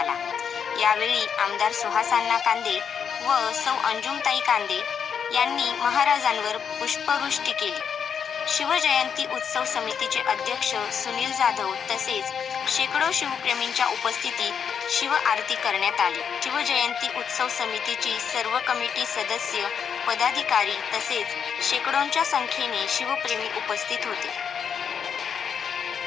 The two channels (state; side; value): quieter; right; 7.2 dB